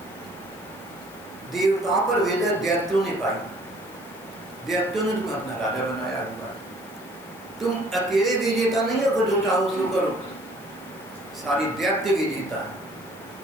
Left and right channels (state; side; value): noise; left; hiss, 23 dB below the sound